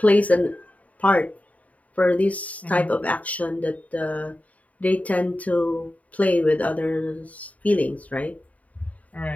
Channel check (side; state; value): right; late; 0.070 ms